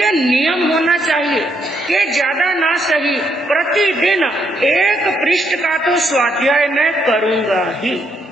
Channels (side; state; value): both; normal; correlation 0.75